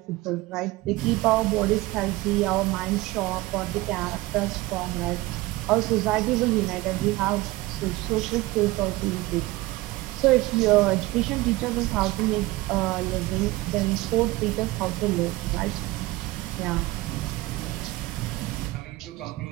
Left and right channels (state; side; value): quieter; left; 19.9 dB